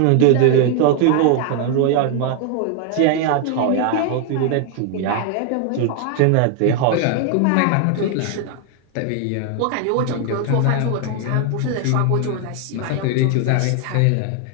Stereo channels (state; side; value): different; both; correlation 0.00